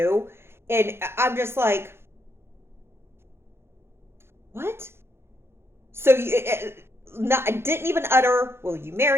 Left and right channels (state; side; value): late; left; 0.12 ms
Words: And I'm just like, what? So I didn't even utter, will you